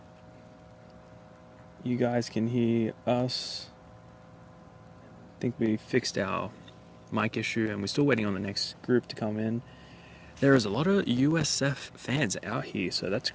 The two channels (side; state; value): both; identical; correlation 1.00